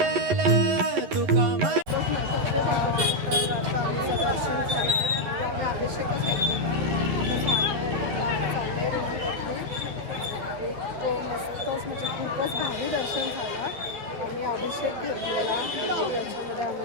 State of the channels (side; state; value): left; late; 11 ms